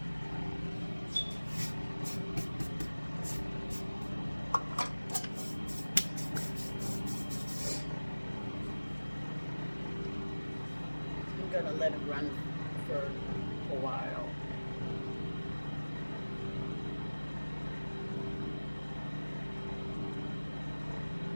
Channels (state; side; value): inverted; both; correlation -1.00